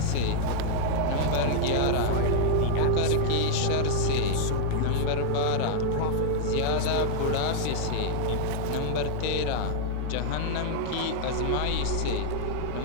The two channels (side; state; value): both; different; correlation -0.01